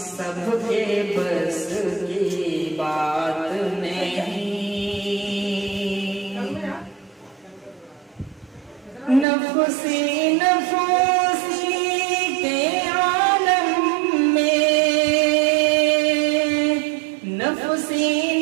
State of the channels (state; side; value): drops out; left; at 9.2 s